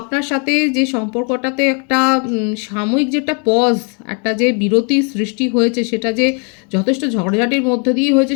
সাথে যে সম্পর্কটাতে একটা সাময়িক যেটা পজ, একটা যে বিরতি সৃষ্টি হয়েছে, সেটা যে যথেষ্ট ঝগড়াঝাটির মধ্যে দিয়ে হয়েছে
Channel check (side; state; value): right; quieter; 37.2 dB